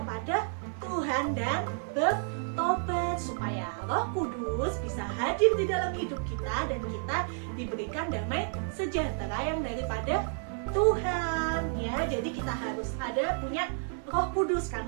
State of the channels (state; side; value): silent; left; 57 dB below the other